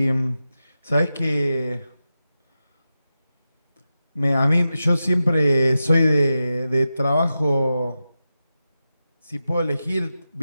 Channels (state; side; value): inverted; both; correlation -0.91